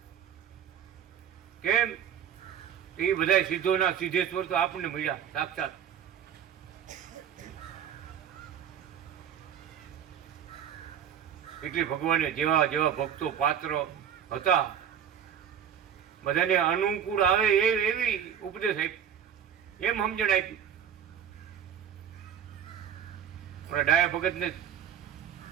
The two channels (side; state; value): left; quieter; 8.8 dB